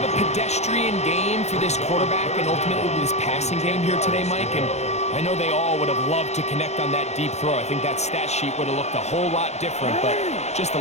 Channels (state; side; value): late; right; 0.32 ms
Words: a pedestrian game for this quarterback and ultimately this passing game here today, Mike. And I know they all would have loved to connect on that deep throw. I think that stat sheet would have looked a whole lot different, but just